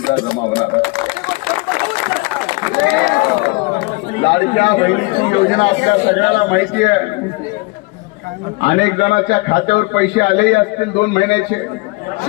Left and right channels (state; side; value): quieter; right; 25.0 dB